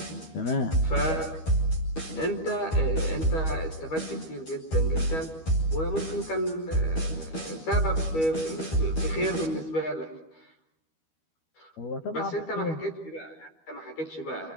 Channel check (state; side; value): late; right; 12 ms